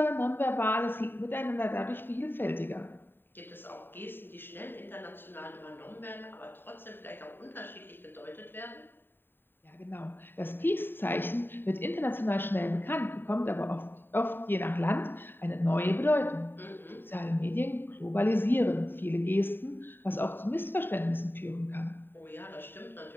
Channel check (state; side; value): late; right; 0.097 ms